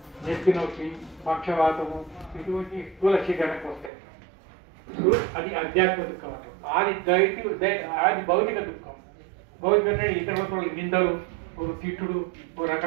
నెత్తి నొప్పి, పక్షవాతము, ఇటువంటి స్థూల శరీరానికి వస్తాయి. అది అధ్యాత్మిక దుఃఖం అంటే. ఆది భౌతిక దుఃఖం, భౌతిక అంటే ఇతరుల నిందలు, తిట్టుడు,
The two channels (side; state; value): left; drops out; at 3.9 s